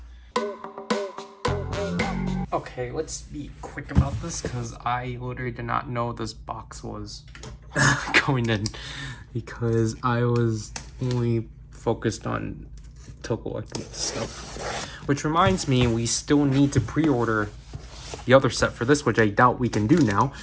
Okay, let's be quick about this because I literally did not know this box was going in because I was only focused on collecting stuff. Which reminds me, we still need to pre-order the other set for this, which I doubt we can do now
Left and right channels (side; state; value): both; identical; correlation 1.00